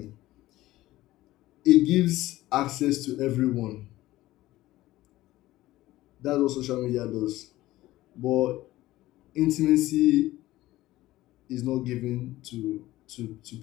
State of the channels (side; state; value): right; quieter; 16.5 dB